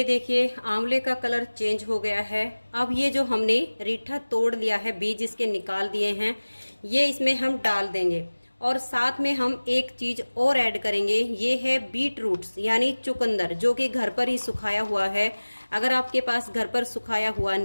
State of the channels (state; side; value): inverted; both; correlation -1.00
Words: देखिए आंवले का कलर चेंज हो गया है। अब ये जो हमने रीठा तोड़ लिया है, बीज इसके निकाल दिए हैं, ये इसमें हम डाल देंगे। और साथ में हम एक चीज़ और ऐड करेंगे, ये है बीट रूट्स यानी चुकंदर, जो कि घर पर ही सुखाया हुआ है। अगर आपके पास घर पर सुखाया हुआ